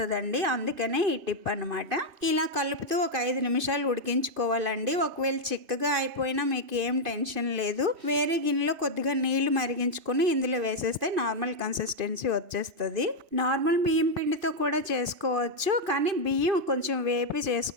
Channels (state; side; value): late; left; 2.5 ms